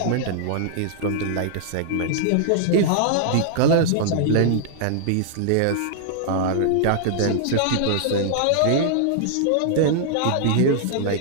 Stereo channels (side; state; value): both; different; correlation -0.01